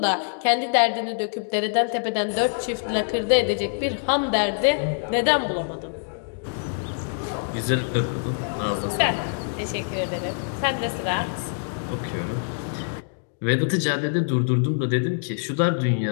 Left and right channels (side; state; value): right; silent; digital silence